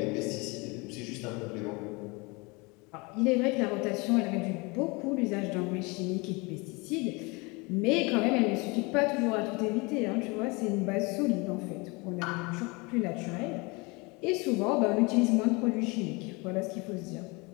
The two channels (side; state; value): right; quieter; 27.1 dB